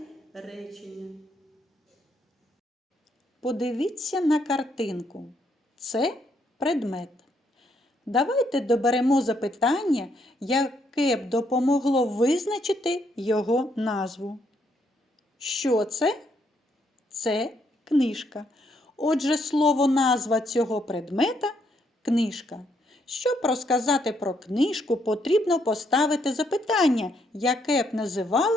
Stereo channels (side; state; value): both; normal; correlation 0.73